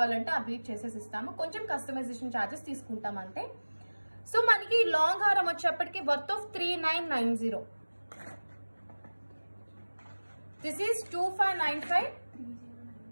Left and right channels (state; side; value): inverted; both; correlation -1.00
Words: ఆ బీట్ చేసేసి ఇస్తాము. కొంచెం కస్టమైజేషన్ ఛార్జెస్ తీసుకుంటాం అంతే. సో మనకి లాంగ్ హారం వచ్చేప్పటికి worth of 3990. This is 2595